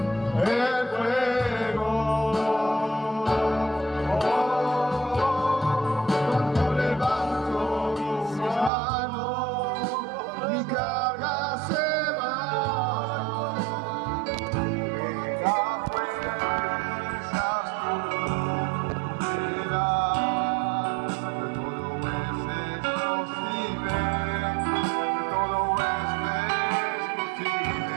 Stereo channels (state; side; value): drops out; left; at 8.7 s